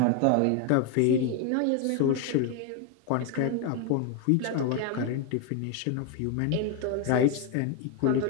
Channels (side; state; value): both; different; correlation 0.01